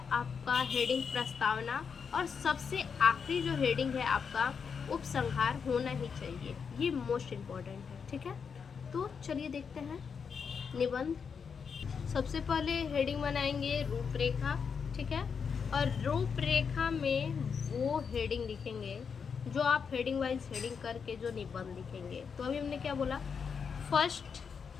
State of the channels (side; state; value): right; quieter; 6.2 dB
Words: हेडिंग प्रस्तावना और सबसे आखिरी जो हेडिंग है आपका उपसंहार होना ही चाहिए। ये मोस्ट इम्पॉर्टेंट है, ठीक है। तो चलिए देखते हैं निबंध। सबसे पहले हेडिंग बनाएंगे रूपरेखा, ठीक है। और रूपरेखा में वो हेडिंग लिखेंगे जो आप हेडिंग वाइज हेडिंग करके जो निबंध लिखेंगे। तो अभी हमने क्या बोला, फर्स्ट